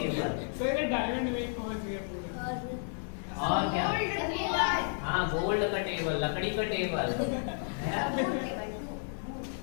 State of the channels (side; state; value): right; silent; 56 dB below the other